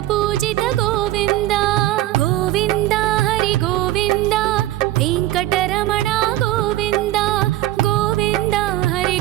పూజిత గోవింద గోవింద హరి గోవింద వెంకటరమణ గోవింద గోవింద హరి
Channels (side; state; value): left; quieter; 15.4 dB